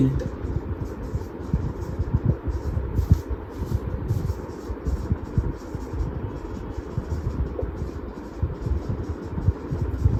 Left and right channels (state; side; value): identical; both; correlation 1.00